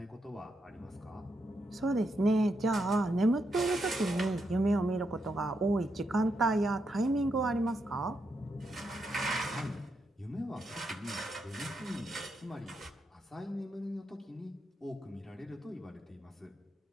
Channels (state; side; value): normal; both; correlation 0.82